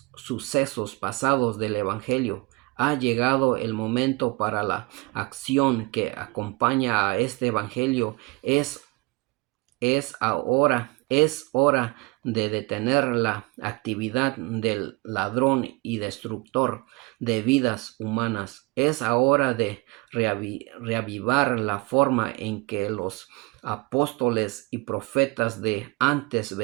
sucesos pasados del Evangelio. Ha llegado el momento para la acción que acompaña a este Evangelio. Es hora de detener la actividad del ladrón y destructor de vidas humanas. Es hora de reavivar la forma en que los apóstoles y profetas de antes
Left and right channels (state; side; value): quieter; left; 25.3 dB